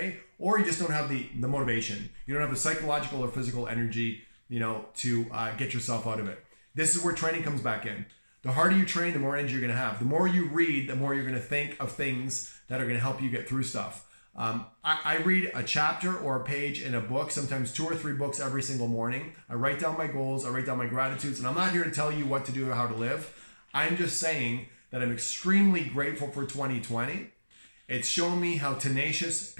or you just don't have the motivation. You don't have the psychological or physical energy, to get yourself out of it. This is where training comes back in. The harder you train, the more energy you're going to have. The more you read, the more you're going to think of things that are going to help you get through stuff. I read a chapter or a page in a book, sometimes 2 or 3 books every single morning. I write down my goals, I write down my gratitudes, and I'm not here to tell you what to do or how to live. I'm just saying that I'm extremely grateful for 2020. It's shown me how tenacious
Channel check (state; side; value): inverted; both; correlation -1.00